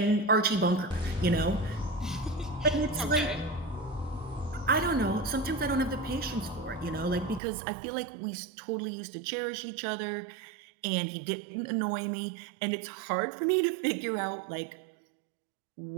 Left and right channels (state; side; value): drops out; left; at 7.4 s